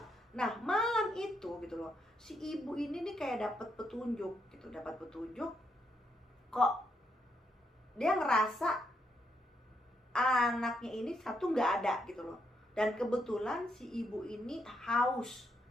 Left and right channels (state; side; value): normal; both; correlation 0.78